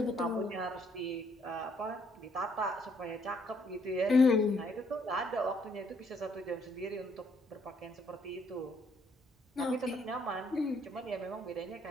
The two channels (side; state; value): both; normal; correlation 0.68